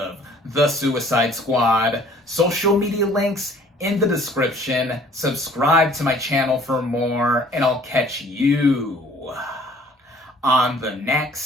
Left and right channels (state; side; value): normal; both; correlation 0.55